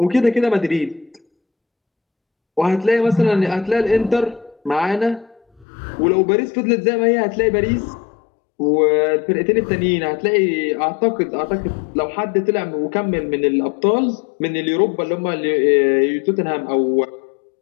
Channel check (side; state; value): right; drops out; at 5.7 s